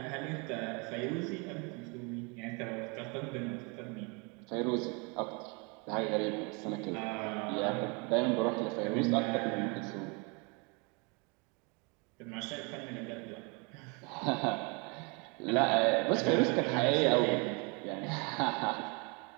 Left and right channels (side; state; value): left; quieter; 31.6 dB